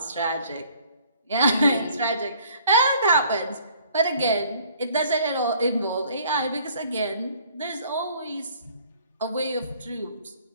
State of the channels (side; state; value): both; inverted; correlation -0.57